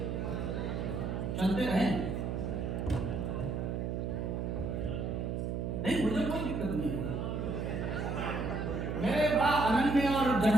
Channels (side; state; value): right; noise; hum, 2 dB below the sound